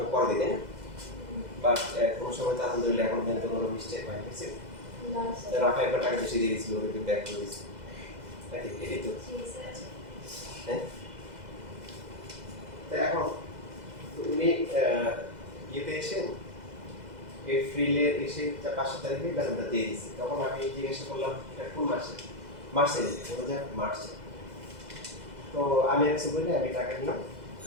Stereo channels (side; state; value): left; late; 2.0 ms